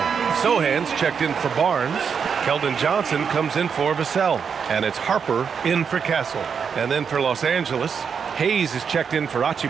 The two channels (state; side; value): quieter; left; 6.6 dB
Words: Sohan's checked in for Barnes. Keldon Johnson comes in for Vassell. And it's Harper in for Castle. And then for Los Angeles, Hayes is checked in for